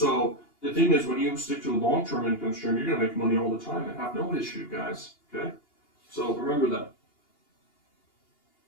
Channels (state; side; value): late; right; 2.8 ms